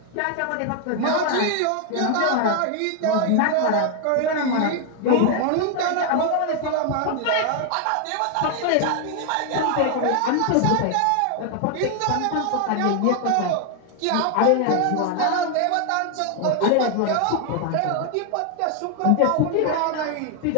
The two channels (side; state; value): both; different; correlation 0.00